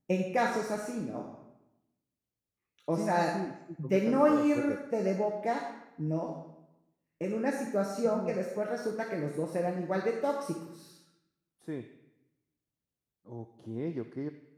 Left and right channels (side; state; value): both; identical; correlation 1.00